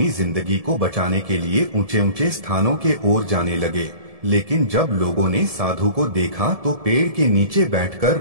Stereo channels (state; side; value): late; left; 1.7 ms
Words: जिंदगी को बचाने के लिए ऊंचे ऊंचे स्थानों के ओर जाने लगे। लेकिन जब लोगों ने साधु को देखा तो पेड़ के नीचे बैठकर